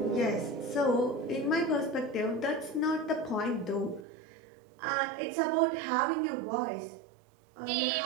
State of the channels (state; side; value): drops out; left; at 4.0 s